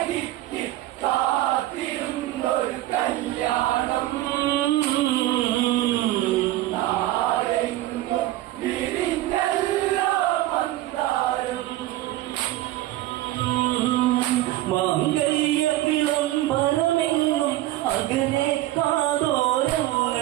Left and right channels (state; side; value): quieter; left; 15.5 dB